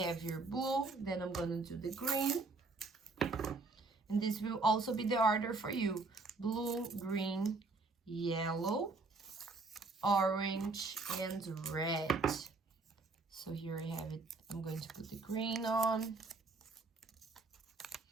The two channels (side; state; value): left; quieter; 3.7 dB